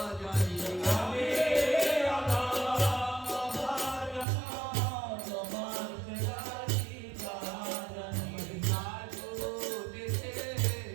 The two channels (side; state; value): left; drops out; at 4.2 s